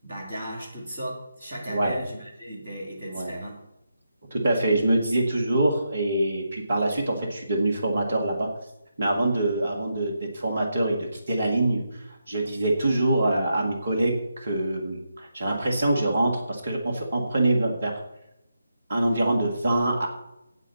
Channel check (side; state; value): both; inverted; correlation -0.83